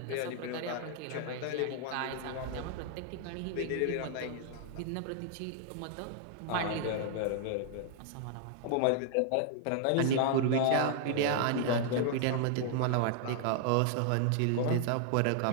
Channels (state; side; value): different; both; correlation 0.00